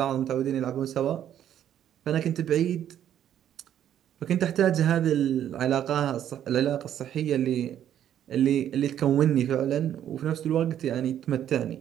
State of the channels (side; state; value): left; quieter; 10.5 dB